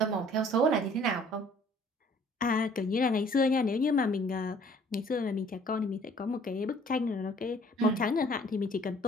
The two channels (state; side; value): normal; both; correlation 0.56